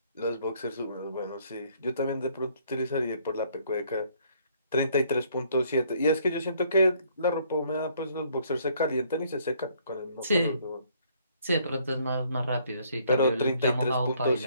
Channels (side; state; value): both; inverted; correlation -0.65